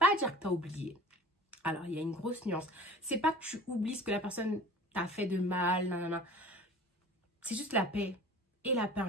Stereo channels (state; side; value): normal; both; correlation 0.42